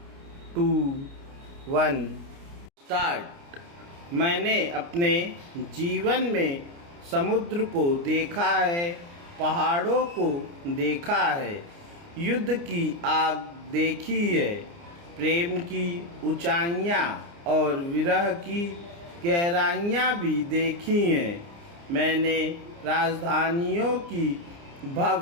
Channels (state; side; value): late; left; 29 ms